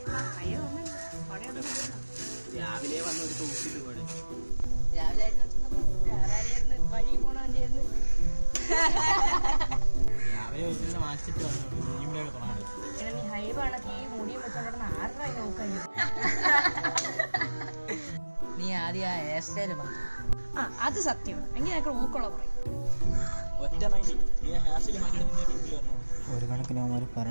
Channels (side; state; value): both; inverted; correlation -1.00